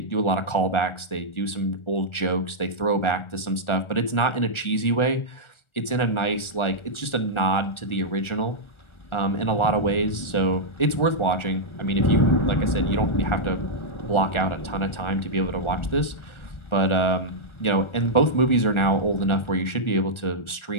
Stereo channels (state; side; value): late; right; 1.4 ms